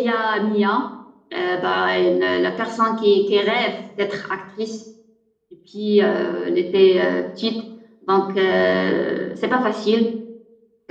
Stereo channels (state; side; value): identical; both; correlation 1.00